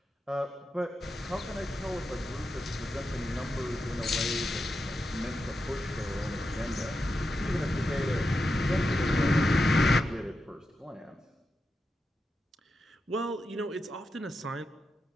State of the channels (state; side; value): normal; both; correlation 0.88